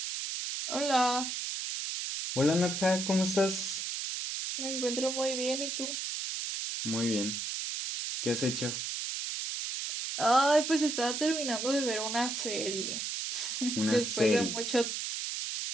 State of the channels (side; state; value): right; noise; hiss, 3 dB below the sound